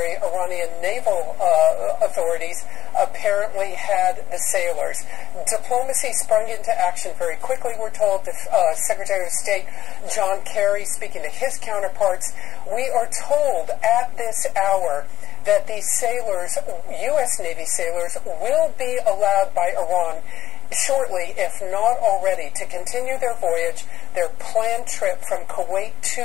Iranian naval authorities apparently had the sailors. Diplomacy sprung into action very quickly, we're told. The Secretary of State John Kerry, speaking to his counterparts, we are told at this hour that these sailors, U.S. Navy sailors, will be allowed by Iran shortly, if not already, to continue their voyage, their planned trip from Kuwait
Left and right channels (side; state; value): right; quieter; 13.2 dB